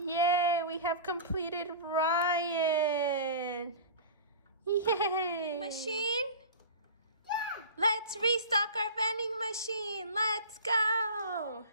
we have completed Ryan. Yay. Machine? Yeah. Let's restock our vending machine. Let's go.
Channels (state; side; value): inverted; both; correlation -0.34